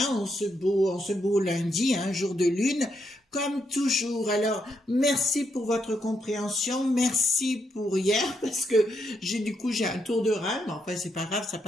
en ce beau lundi, un jour de lune, comme toujours. Alors, merci pour votre compréhension, merci pour hier, parce que j'ai un tour de rein, mais enfin c'est pas grave, ça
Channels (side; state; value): both; normal; correlation 0.79